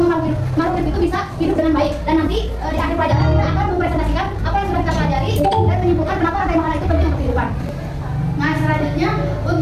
makhluk hidup itu bisa hidup dengan baik. Dan nanti di akhir pelajaran kita akan mempresentasikan apa yang sudah kita pelajari dan menyimpulkan kenapa rantai makanan itu penting untuk kehidupan. Nah, selanjutnya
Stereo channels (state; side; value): identical; both; correlation 1.00